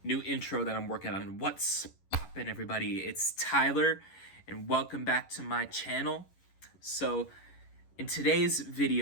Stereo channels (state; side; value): late; right; 11 ms